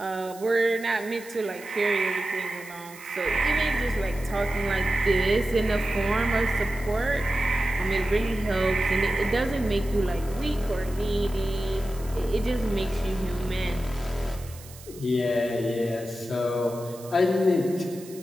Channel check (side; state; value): right; noise; hiss, 19 dB below the sound